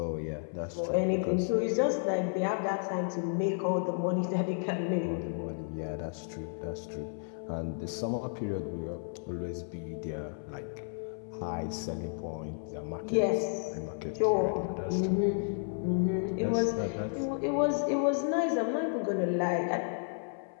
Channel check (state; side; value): silent; right; 56 dB below the other